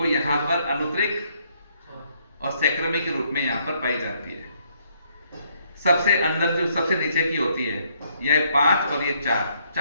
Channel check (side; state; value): both; inverted; correlation -0.70